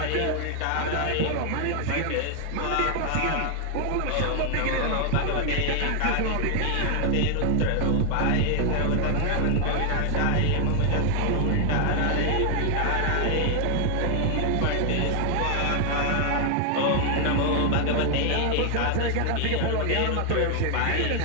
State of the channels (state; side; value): different; both; correlation 0.00